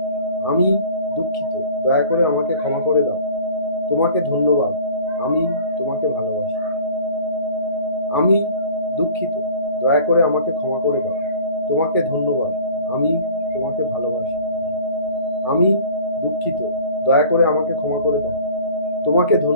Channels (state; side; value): inverted; both; correlation -0.46